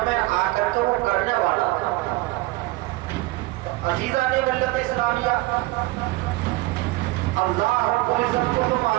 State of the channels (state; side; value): quieter; left; 20.2 dB